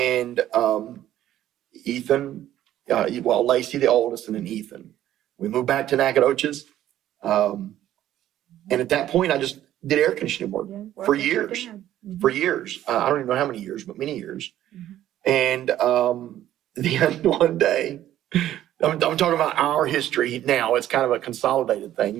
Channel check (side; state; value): left; quieter; 12.6 dB